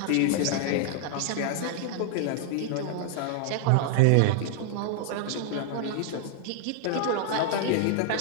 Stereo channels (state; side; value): different; both; correlation 0.00